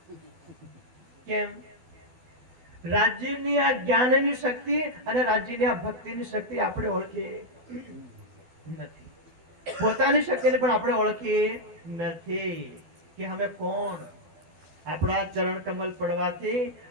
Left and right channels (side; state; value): left; late; 12 ms